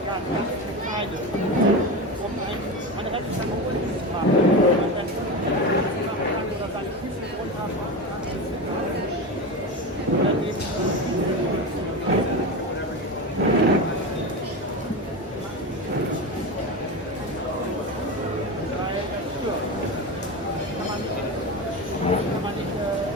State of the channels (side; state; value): both; normal; correlation 0.21